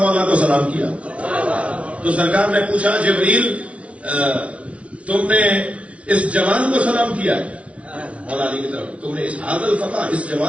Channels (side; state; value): left; late; 0.063 ms